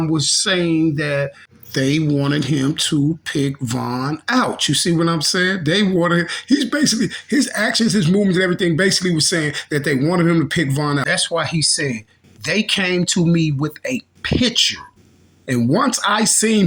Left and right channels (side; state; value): both; identical; correlation 1.00